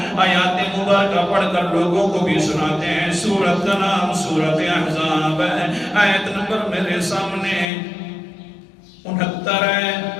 آیات مبارکہ پڑھ کر لوگوں کو بھی سناتے ہیں. سورت کا نام سورت احزاب ہے. آیت نمبر میرے سامنے 69 ہے.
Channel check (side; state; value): right; drops out; at 7.7 s